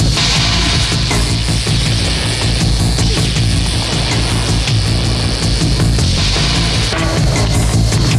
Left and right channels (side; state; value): both; identical; correlation 1.00